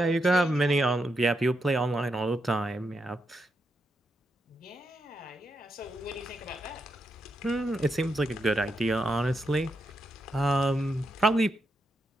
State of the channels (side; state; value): both; normal; correlation 0.83